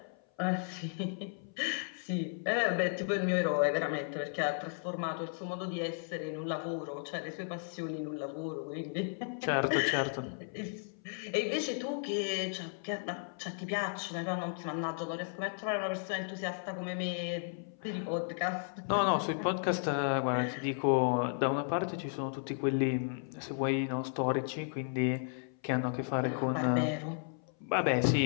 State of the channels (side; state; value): right; silent; 55 dB below the other